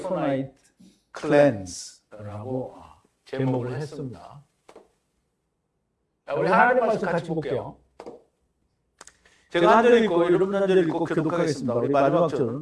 clans라고 제목을 했습니다. 우리 하나님 말씀 같이 볼게요. 제가 한 절 읽고 여러분 한 절 읽고 교독하겠습니다. 우리 마지막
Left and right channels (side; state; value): both; identical; correlation 1.00